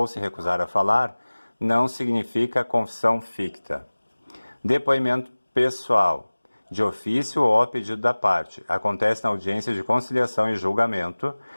se recusar a falar, não significa confissão ficta. Depoimento pessoal: de ofício ou a pedido da parte. Acontece na audiência de conciliação e julgamento.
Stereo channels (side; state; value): both; inverted; correlation -1.00